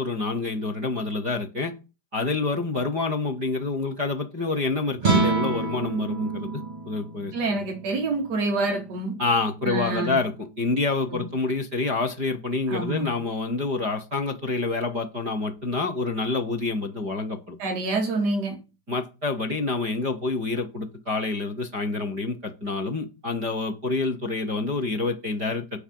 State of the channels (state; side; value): late; left; 5.0 ms